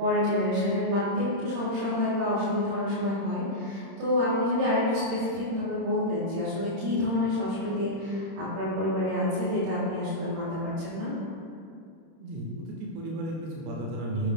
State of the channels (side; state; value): left; late; 31 ms